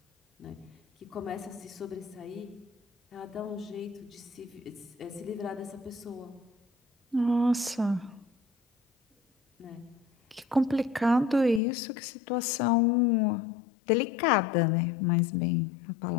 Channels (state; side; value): drops out; right; at 11.6 s